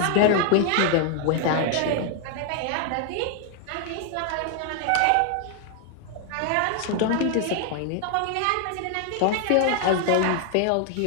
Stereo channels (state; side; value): different; both; correlation 0.00